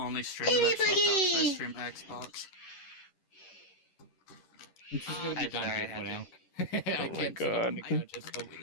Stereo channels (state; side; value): late; right; 10 ms